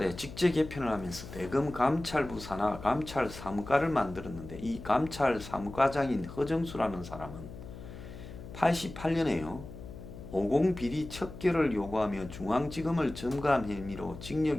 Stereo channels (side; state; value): left; noise; hum, 13 dB below the sound